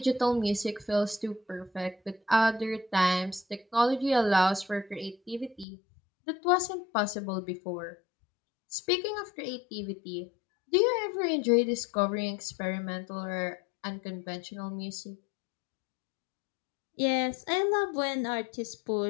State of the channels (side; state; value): right; drops out; at 5.7 s